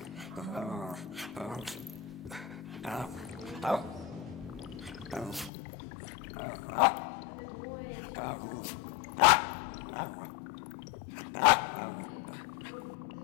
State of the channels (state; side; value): drops out; right; at 5.5 s